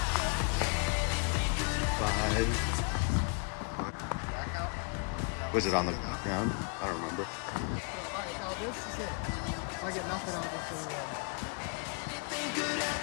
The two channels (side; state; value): right; quieter; 37.4 dB